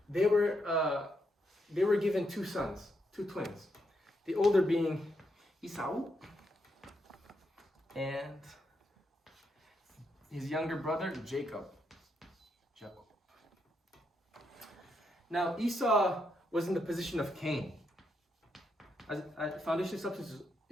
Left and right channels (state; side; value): normal; both; correlation 0.80